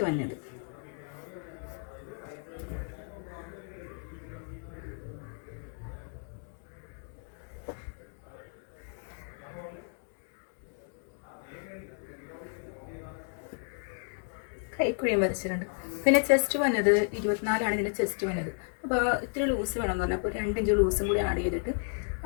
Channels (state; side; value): silent; right; 56 dB below the other